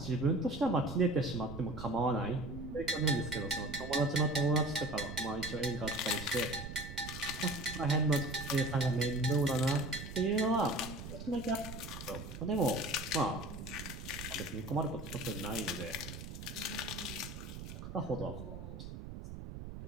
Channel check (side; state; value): right; noise; rumble, 10 dB below the sound